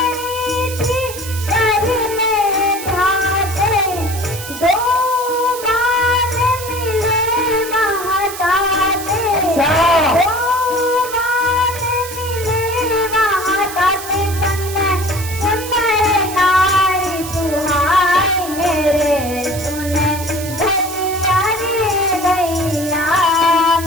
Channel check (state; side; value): noise; right; hiss, 11 dB below the sound